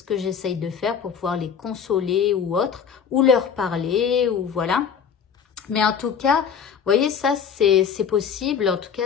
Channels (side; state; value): right; quieter; 7.1 dB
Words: que j'essaye de faire pour pouvoir les consoler ou autre, ou leur parler, ou voilà. Mais en tout cas, vous voyez, ça, c'est possible. En tout